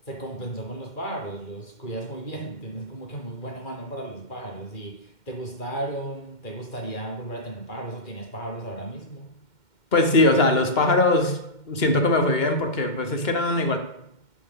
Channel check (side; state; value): right; late; 2.1 ms